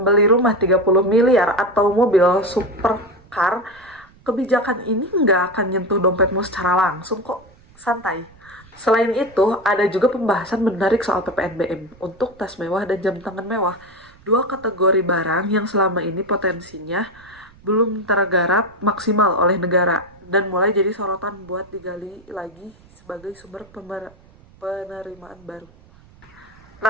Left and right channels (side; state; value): right; noise; rumble, 26 dB below the sound